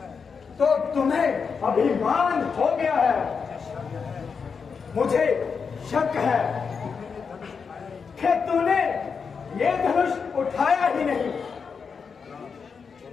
तो तुम्हें अभिमान हो गया है। मुझे शक है कि तूने ये धनुष उठाया ही नहीं।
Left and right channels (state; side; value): quieter; right; 5.7 dB